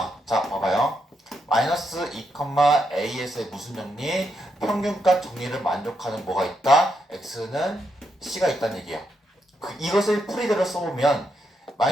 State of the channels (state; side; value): normal; both; correlation 0.81